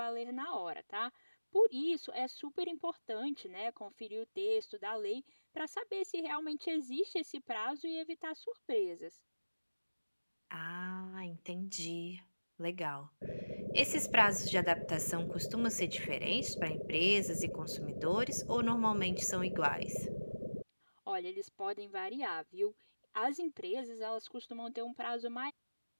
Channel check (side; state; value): both; inverted; correlation -1.00